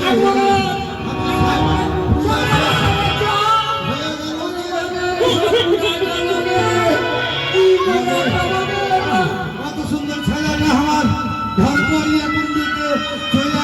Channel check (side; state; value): both; identical; correlation 1.00